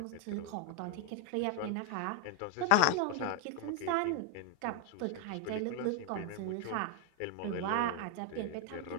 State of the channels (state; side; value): different; both; correlation 0.00